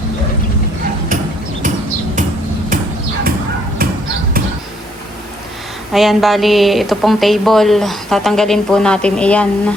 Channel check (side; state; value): both; normal; correlation 0.68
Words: Ayan, bali, ito pong table. Tatanggalin po natin iyan.